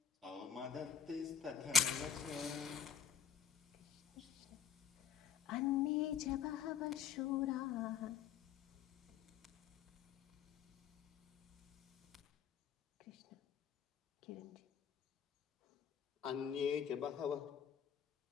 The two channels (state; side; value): quieter; right; 8.0 dB